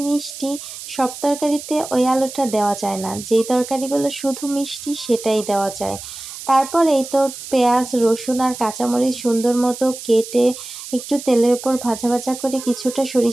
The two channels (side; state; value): right; noise; hiss, 12 dB below the sound